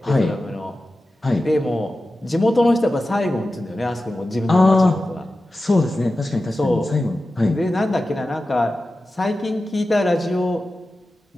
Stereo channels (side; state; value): both; normal; correlation 0.94